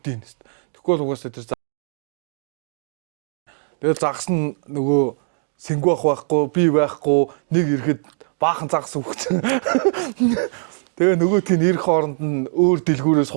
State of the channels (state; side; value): silent; left; 60 dB below the other